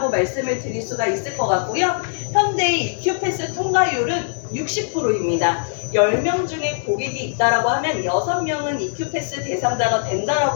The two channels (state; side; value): silent; right; digital silence